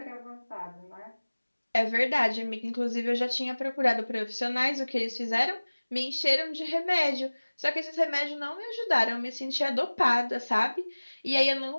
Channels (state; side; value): inverted; both; correlation -1.00